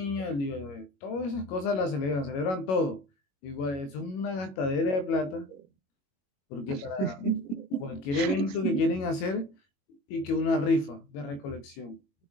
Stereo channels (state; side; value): late; right; 21 ms